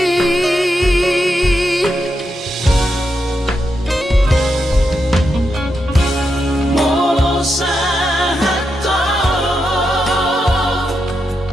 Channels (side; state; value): both; normal; correlation 0.85